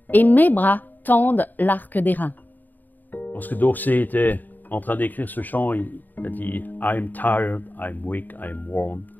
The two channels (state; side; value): late; right; 0.087 ms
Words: et mes bras tendent l'arc d'airain. » Lorsque d'Orsay était en train d'écrire ce chant, il a dit « I'm tired, I'm weak, I'm worn.